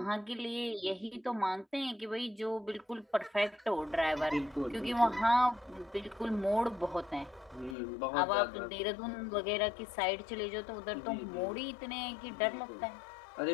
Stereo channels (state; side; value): drops out; right; at 7.8 s